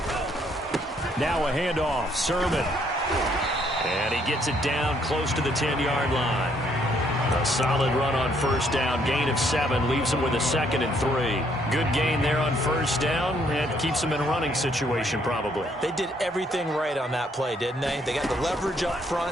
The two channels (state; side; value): normal; both; correlation 0.68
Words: Now a handoff, Sermon. And he gets it down close to the 10-yard line. A solid run on first down. Gain of 7 leaves him with a 2nd and 3. Good gain there on first down. And keeps him in a running situation probably. They did everything right on that play, didn't they? They got the leverage up